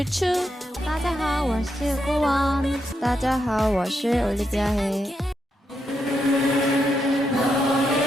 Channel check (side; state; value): both; normal; correlation 0.82